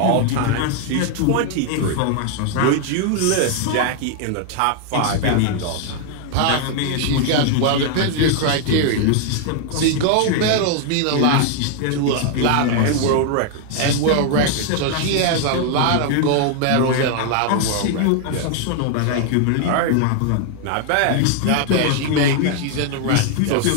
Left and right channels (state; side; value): different; both; correlation 0.00